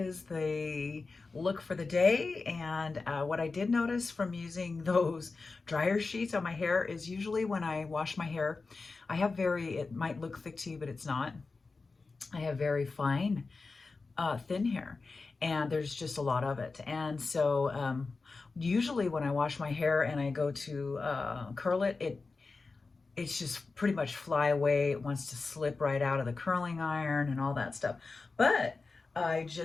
the look for the day. And what I did notice from using those dryer sheets on my hair is usually when I wash my hair, I have it might look thick to you, but it's not. I have very fine, thin hair, and there's just a lot of it. And so usually when I wash my hair and I go to curl it, it's just pretty much fly away. It wants to slip right out of the curling iron and all that stuff. But I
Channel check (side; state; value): right; quieter; 4.0 dB